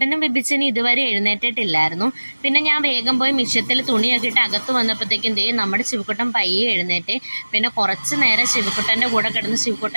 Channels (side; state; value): both; inverted; correlation -1.00